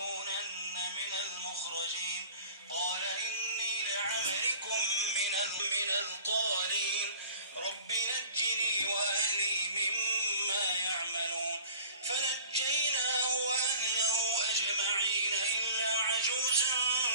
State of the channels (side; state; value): both; inverted; correlation -0.44